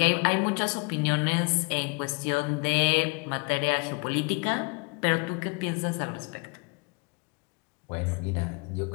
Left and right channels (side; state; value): right; quieter; 31.4 dB